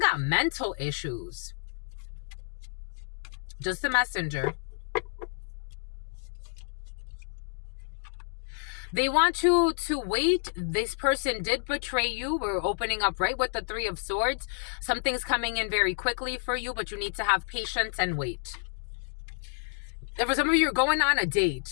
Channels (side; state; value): right; silent; digital silence